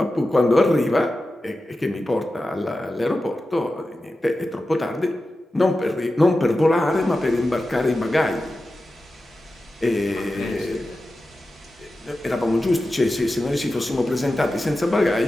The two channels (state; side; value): normal; both; correlation 0.93